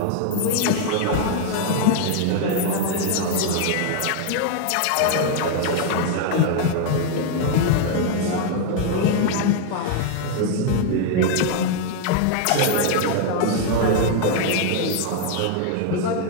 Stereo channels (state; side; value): different; both; correlation 0.00